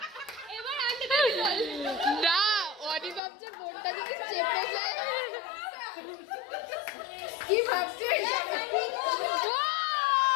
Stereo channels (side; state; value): right; drops out; at 3.2 s